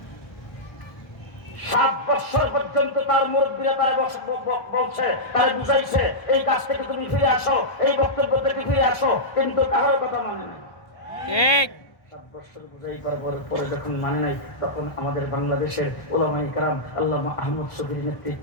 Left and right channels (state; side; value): late; right; 1.2 ms